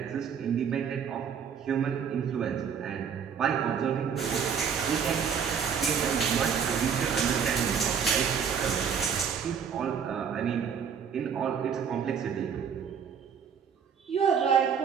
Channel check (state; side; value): quieter; left; 7.1 dB